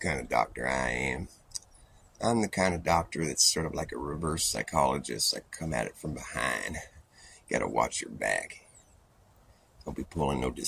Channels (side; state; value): both; identical; correlation 1.00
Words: of doctor I am. I'm the kind of doctor that's sort of like a reverse psychologist. I come at it from behind. You gotta watch your back. Don't be pulling no